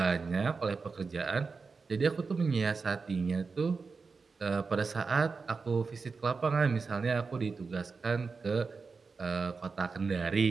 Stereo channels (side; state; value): left; quieter; 4.7 dB